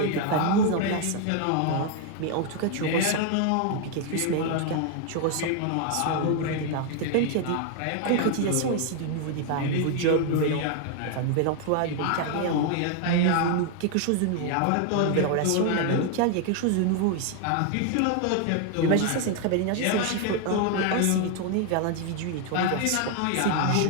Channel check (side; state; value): both; different; correlation 0.00